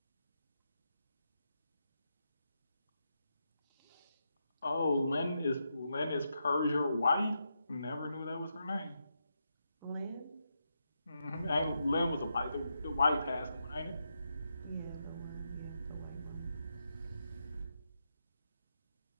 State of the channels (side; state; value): both; inverted; correlation -0.84